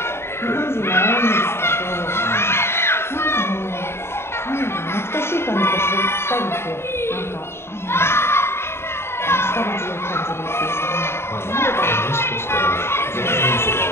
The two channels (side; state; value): right; late; 0.12 ms